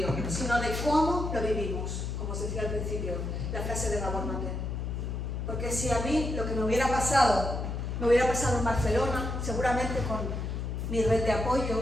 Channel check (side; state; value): left; noise; hum, 3 dB below the sound